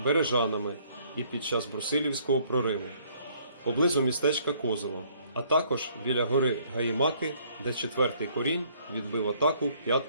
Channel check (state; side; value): inverted; both; correlation -0.63